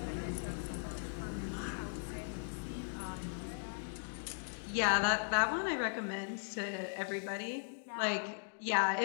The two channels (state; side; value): silent; right; digital silence